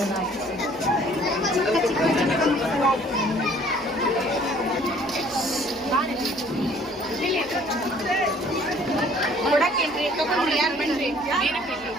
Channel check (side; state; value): left; noise; hum, 27 dB below the sound